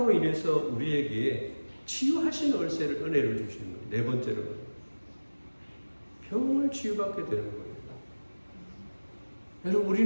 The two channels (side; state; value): both; inverted; correlation -1.00